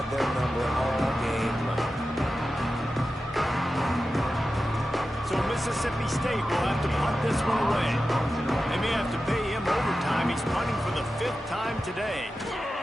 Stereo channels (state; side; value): normal; both; correlation 0.93